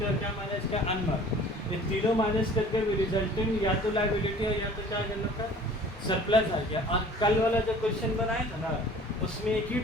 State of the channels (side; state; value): both; normal; correlation 0.48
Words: क्या माइनस किया, अनमार्क्ड। ये तीनों माइनस करके भी रिजल्टेंट या तो लायबिलिटी है या तो क्या करना था, सरप्लस आ गया। और कल वाला जो क्वेश्चन बनाया था ना उसमें एक ही